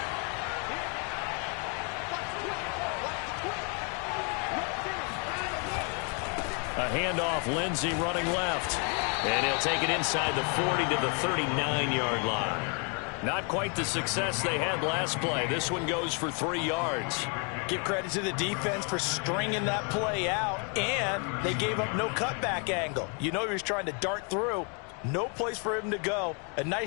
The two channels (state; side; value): quieter; right; 37.4 dB